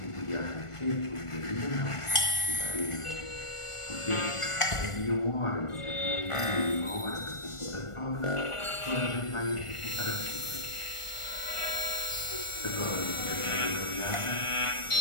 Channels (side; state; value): right; late; 1.5 ms